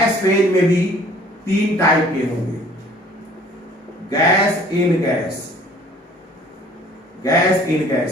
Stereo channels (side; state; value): both; normal; correlation 0.54